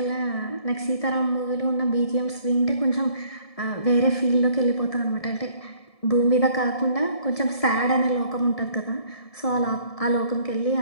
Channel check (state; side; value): late; right; 1.7 ms